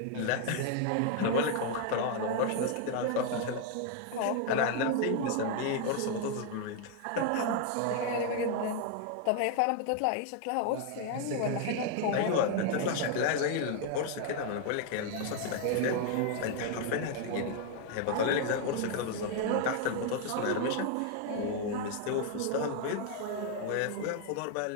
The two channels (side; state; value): both; different; correlation 0.00